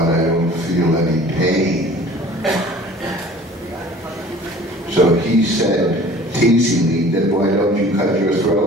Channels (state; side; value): normal; both; correlation 0.47